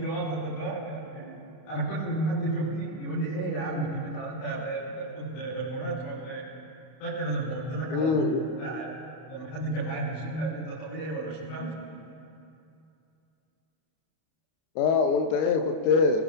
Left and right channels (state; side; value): late; right; 32 ms